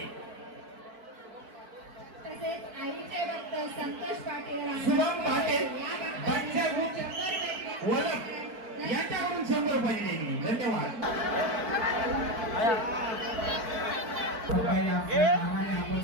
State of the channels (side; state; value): left; late; 4.5 ms